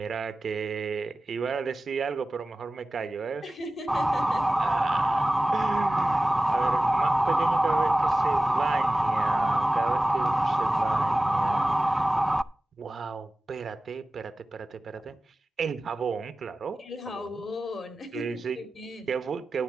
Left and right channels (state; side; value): normal; both; correlation 0.96